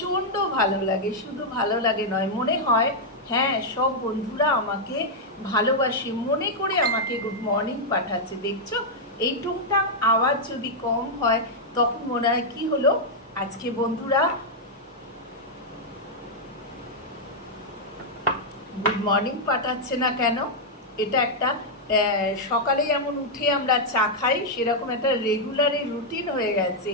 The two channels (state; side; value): normal; both; correlation -0.03